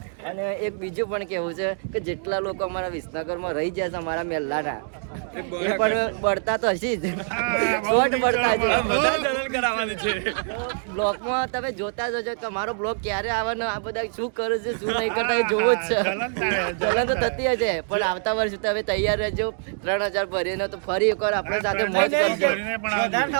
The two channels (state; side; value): silent; left; digital silence